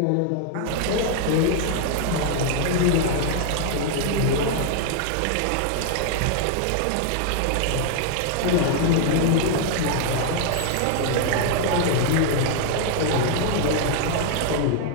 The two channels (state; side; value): different; both; correlation 0.00